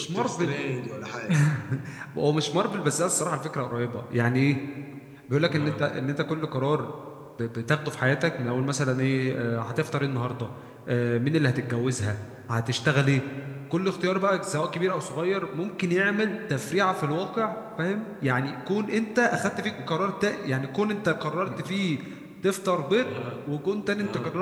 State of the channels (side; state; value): both; identical; correlation 1.00